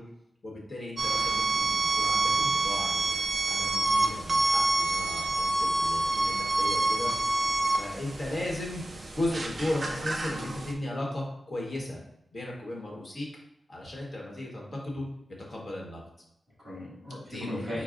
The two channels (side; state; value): both; normal; correlation 0.93